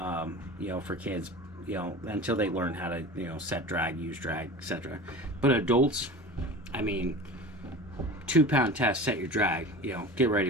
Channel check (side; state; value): both; normal; correlation 0.35